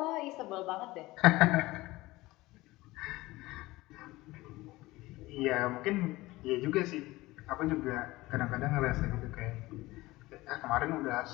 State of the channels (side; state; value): right; quieter; 19.5 dB